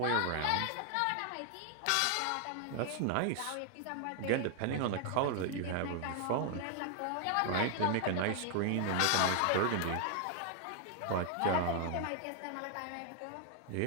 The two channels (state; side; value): different; both; correlation 0.00